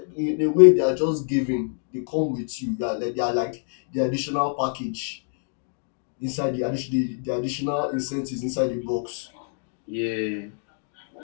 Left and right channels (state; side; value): silent; right; 61 dB below the other